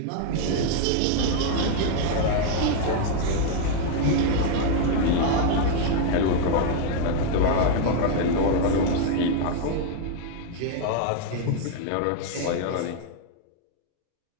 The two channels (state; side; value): different; both; correlation 0.00